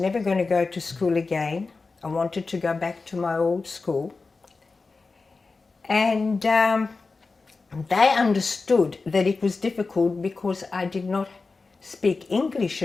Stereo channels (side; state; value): right; quieter; 4.0 dB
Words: going to go to school again. I wanted to go back to my old school. And they understood that it was difficult because I did not speak English